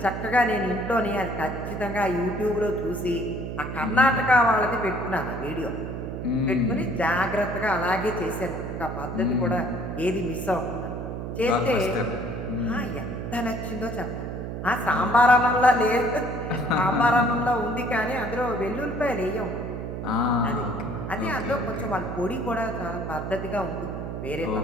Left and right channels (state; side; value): noise; right; hum, 6 dB below the sound